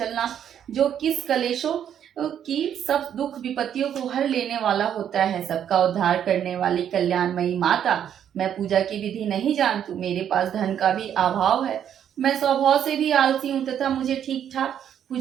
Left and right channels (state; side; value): quieter; left; 9.4 dB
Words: जो किस कलेशों की सब दुख विपत्तियों को हर लेने वाला होता है, सबका उद्धार करने वाली कल्याणमयी माता। मैं पूजा की विधि नहीं जानती, मेरे पास धन का भी अभाव है, मैं स्वभाव से भी आलसी हूँ तथा मुझे ठीक ठाक